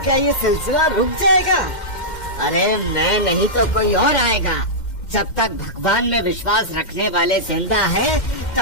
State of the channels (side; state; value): right; late; 2.1 ms